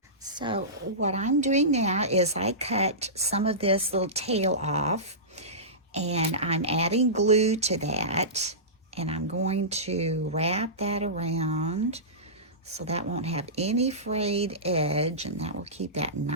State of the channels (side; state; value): both; normal; correlation -0.20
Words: So what I'm doing now is I cut some of this little tail off and I'm adding glue to that, and I'm going to wrap that around so that won't have any frayed edge, and that will keep that